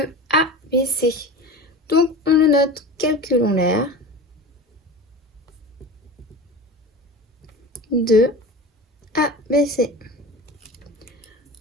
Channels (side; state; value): both; normal; correlation 0.33